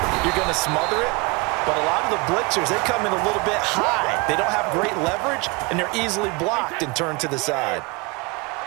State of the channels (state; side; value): quieter; left; 27.3 dB